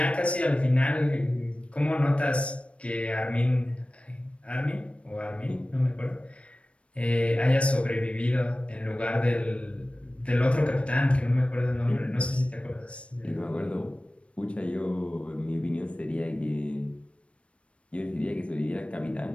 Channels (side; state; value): right; late; 0.061 ms